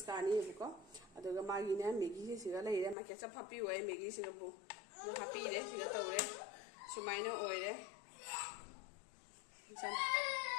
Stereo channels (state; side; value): drops out; right; at 3.0 s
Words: कानीबको अदुगा मागिने मैगी सिगा लेरे मा केचप हापी होय मैगी सिगा बु हापी रे सिगा तौरे सुमाइना ओइरे सन